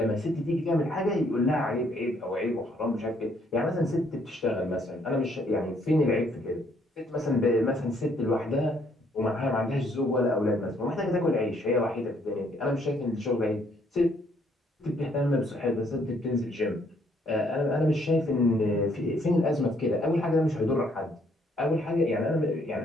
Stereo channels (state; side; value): normal; both; correlation 0.67